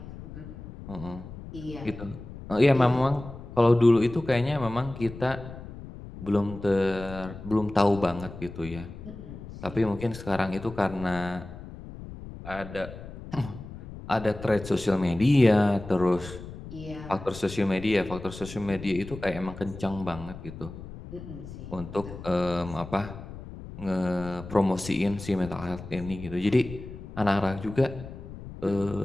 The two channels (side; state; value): left; noise; rumble, 13 dB below the sound